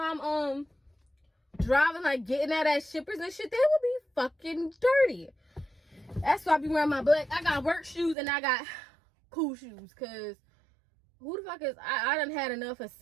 I'm driving, like getting out at shippers and shit, they would be fucking dirty. That's why I be wearing my black. I got work shoes and I got cool shoes, cause who the fuck is I done had enough of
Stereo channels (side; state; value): left; drops out; at 8.2 s